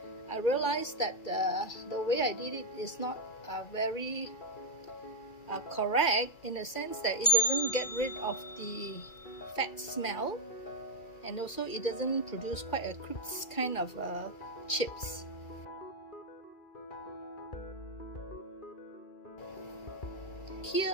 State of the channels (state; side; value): late; right; 2.4 ms